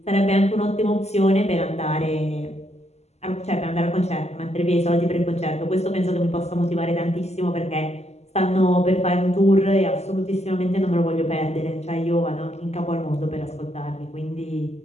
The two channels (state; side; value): late; right; 0.32 ms